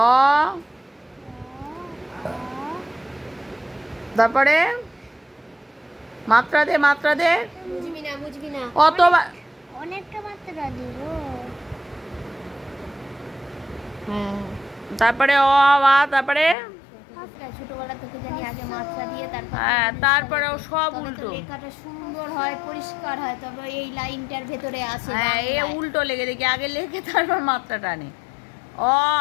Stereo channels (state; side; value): drops out; right; at 16.6 s